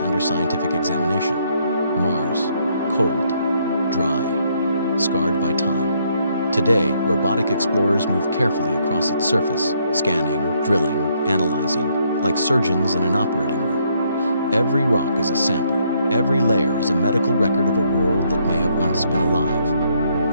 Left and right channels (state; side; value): inverted; both; correlation -0.71